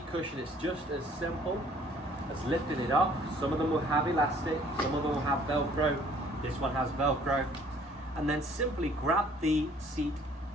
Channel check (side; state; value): both; normal; correlation 0.58